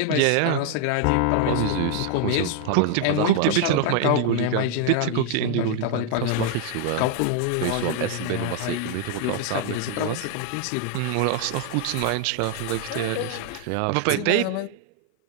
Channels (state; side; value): different; both; correlation 0.00